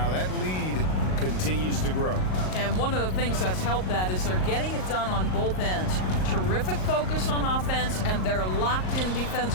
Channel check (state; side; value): late; right; 38 ms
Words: That lead continues to grow. And one of the things that's helped that is they're getting it done on both ends. Terrific focus on offense, and they're locked in